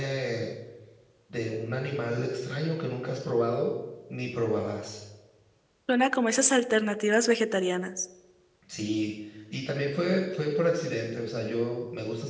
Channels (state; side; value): identical; both; correlation 1.00